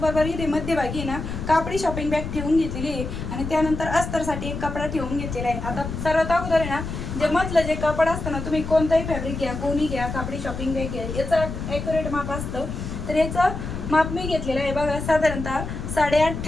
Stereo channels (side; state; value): left; noise; rumble, 6 dB below the sound